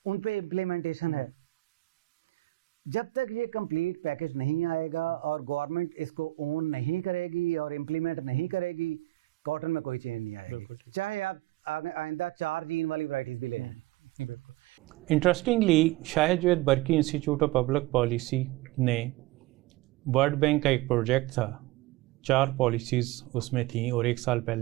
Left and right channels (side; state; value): left; quieter; 18.9 dB